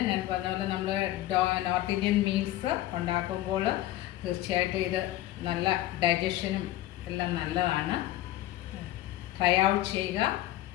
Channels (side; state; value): right; quieter; 15.0 dB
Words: ഞാൻ പറഞ്ഞ പോലെ നമ്മൾ നോർത്ത് ഇന്ത്യൻ മീൽസ് ഉണ്ടാക്കുമ്പോൾ തീർച്ചയായിട്ടും ഇത് നല്ല ഡൈജഷനും എല്ലാം നല്ലതാണ്. ട്രൈ ഔട്ട് ചെയ്യുക,